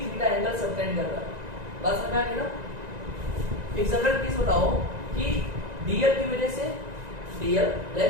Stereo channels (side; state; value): left; late; 1.9 ms